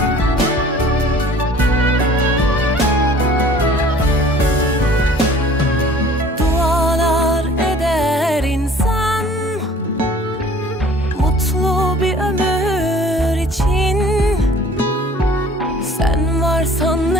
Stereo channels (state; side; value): normal; both; correlation 0.50